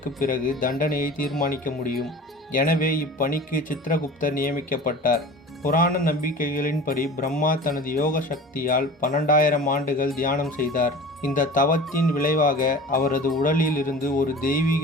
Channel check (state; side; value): normal; both; correlation 0.39